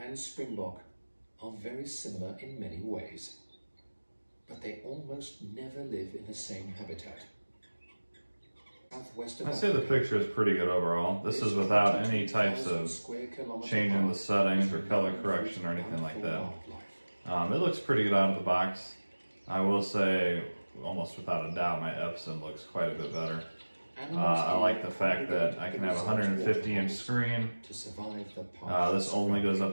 and Springbok are very similar in many ways, but they almost never live in the same habitat. Southwest of I'd say the picture is pretty good overall. This is without any types of changing the settings or color correction or anything like that. It looks pretty good out of the box. I will say, almost without a doubt, my Epson looks quite a bit better. I like the fact that I can have a 150-inch screen. This only goes up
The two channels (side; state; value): both; inverted; correlation -1.00